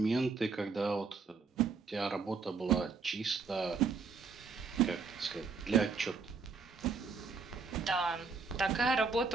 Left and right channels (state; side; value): quieter; left; 4.9 dB